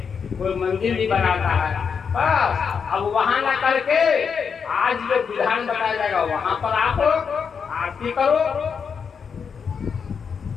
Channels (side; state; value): right; quieter; 6.3 dB